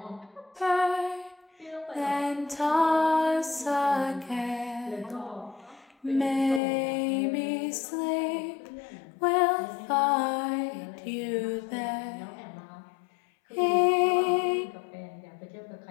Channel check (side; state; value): right; drops out; at 6.6 s